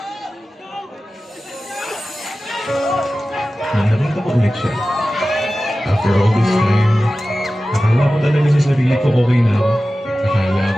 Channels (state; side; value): normal; both; correlation 0.95